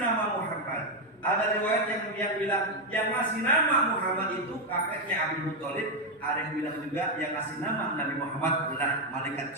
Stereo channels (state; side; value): normal; both; correlation 0.04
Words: Muhammad. Ada riwayat yang bilang yang ngasih nama Muhammad itu kakeknya Abdul Muthalib. Ada yang bilang juga yang ngasih nama Nabi Muhammad adalah malaikat